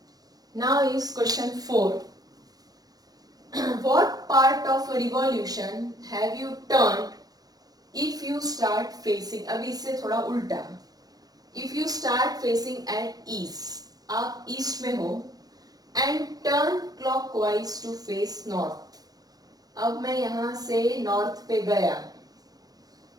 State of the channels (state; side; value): late; left; 0.18 ms